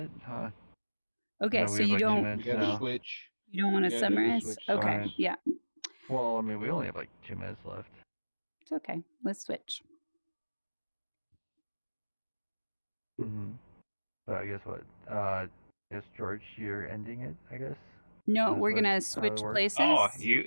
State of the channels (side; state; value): both; inverted; correlation -1.00